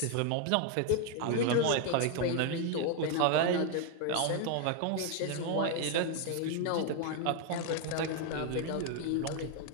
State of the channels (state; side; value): different; both; correlation 0.00